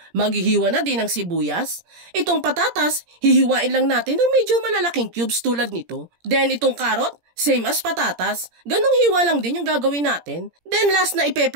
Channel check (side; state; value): left; late; 17 ms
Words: Maghihiwa na din ng sibuyas. Itong patatas, hihiwain lang natin ng medyo malalaking cubes tulad nito. Then itong carrot, same as patatas. Ganong hiwa lang din yung gagawin natin. Then last na